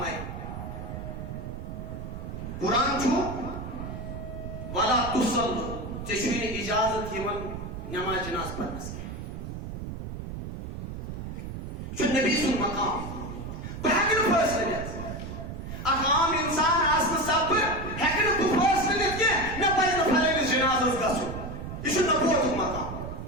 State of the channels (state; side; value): noise; right; rumble, 7 dB below the sound